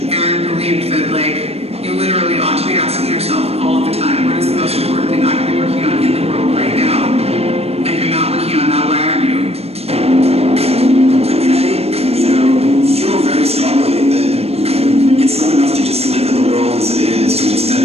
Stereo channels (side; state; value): left; late; 0.29 ms